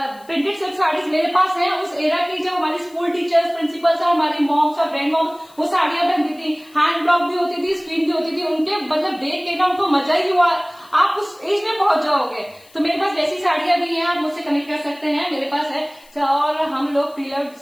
प्रिंटेड सिल्क साड़ीज मेरे पास है उस एरा की, जब हमारी स्कूल टीचर्स, प्रिंसिपल्स और हमारी मॉम्स और ग्रैंड मॉम्स वो साड़ियां पहनती थी, हैंड ब्लॉक भी होती थी, स्क्रीन भी होती थी, उनके मतलब देख के ना उनको मजा ही हुआ। आप उस एज में पहुंच जाओगे, तो मेरे पास वैसी साड़ियां भी हैं, आप मुझसे कनेक्ट कर सकते हैं, मेरे पास है। और हम लोग प्रीलव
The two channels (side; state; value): left; noise; hiss, 27 dB below the sound